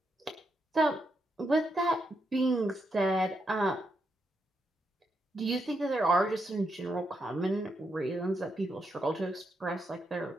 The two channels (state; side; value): normal; both; correlation 0.81